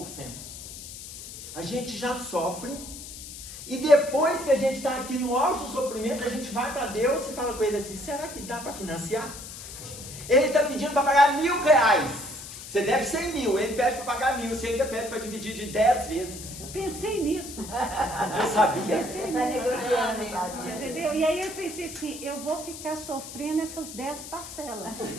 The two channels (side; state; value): left; noise; hiss, 12 dB below the sound